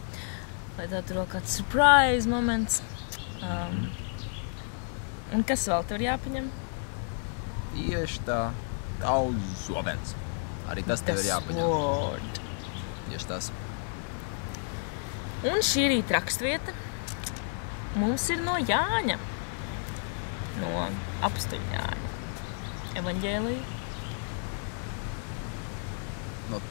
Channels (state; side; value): silent; right; 57 dB below the other